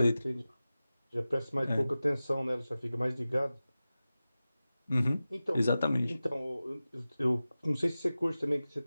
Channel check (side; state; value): both; inverted; correlation -0.96